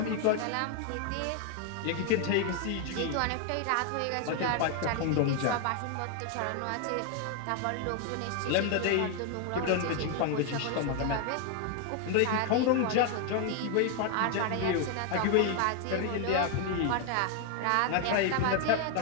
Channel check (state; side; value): different; both; correlation 0.00